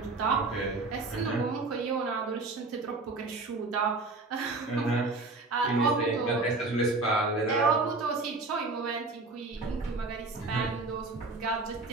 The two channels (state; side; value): quieter; left; 3.4 dB